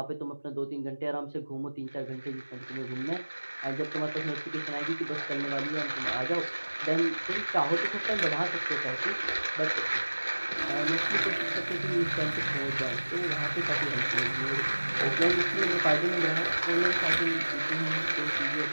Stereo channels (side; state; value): both; inverted; correlation -1.00